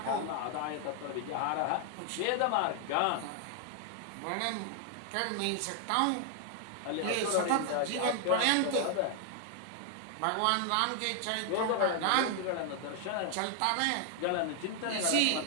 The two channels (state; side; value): different; both; correlation 0.00